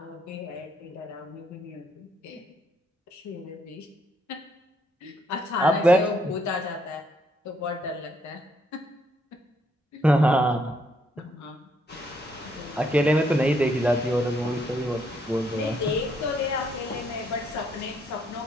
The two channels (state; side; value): normal; both; correlation 0.72